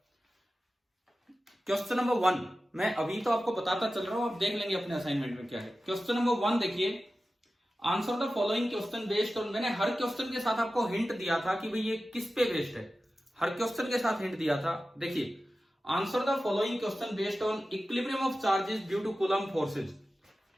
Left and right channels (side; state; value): both; normal; correlation 0.94